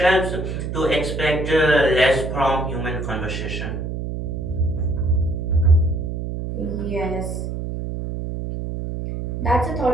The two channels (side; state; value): right; noise; hum, 5 dB below the sound